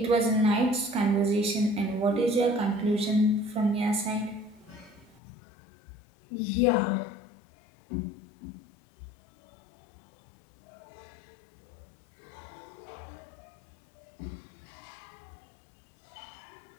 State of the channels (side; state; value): right; drops out; at 5.2 s